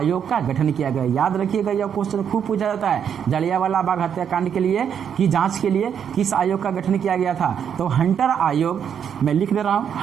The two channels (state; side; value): quieter; left; 8.1 dB